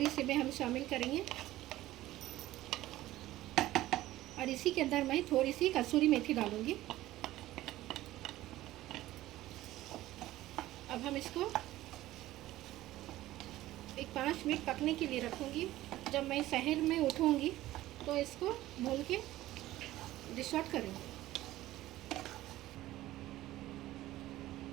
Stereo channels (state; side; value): quieter; left; 15.6 dB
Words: इसी में हम शामिल करेंगे। और इसी के अंदर मैं थोड़ी सी कसूरी मेथी डालूँगी। अब हम इसको 5 मिनट पकने के लिए रखूँगी। जब मैं शहर में उठूँगी तो इसको भून के डिश आउट करेंगे।